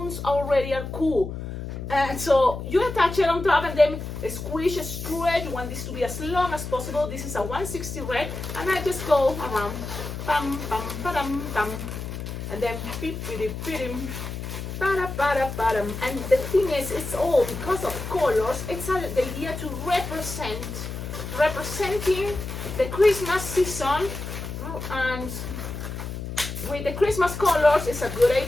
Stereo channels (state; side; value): noise; left; hum, 7 dB below the sound